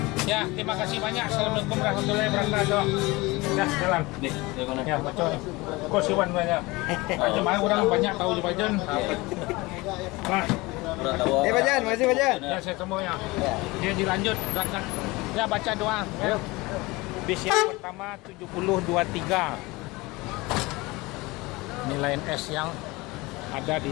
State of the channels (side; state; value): right; quieter; 22.6 dB